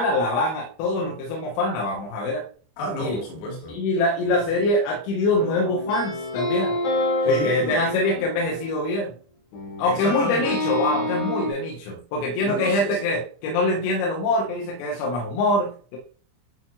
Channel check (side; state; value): right; late; 25 ms